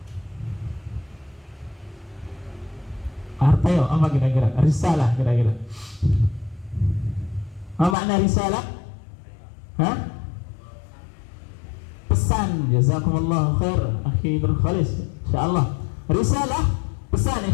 Artinya apa kira-kira? Risalah kira-kira. Apa makna risalah? Hah? Pesan. Jazakumullah khair akhi Nur Khalis. Insyaallah. Risalah pesan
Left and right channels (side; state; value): right; drops out; at 8.0 s